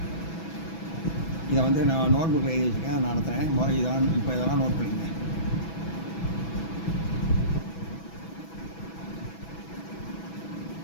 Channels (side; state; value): right; late; 6.1 ms